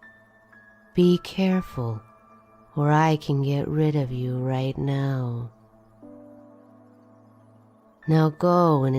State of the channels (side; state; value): both; identical; correlation 1.00